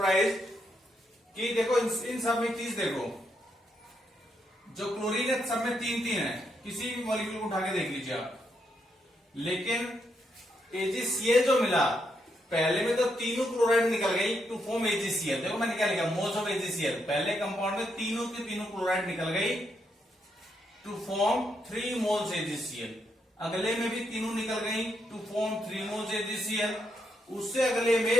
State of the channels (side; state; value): both; normal; correlation 0.79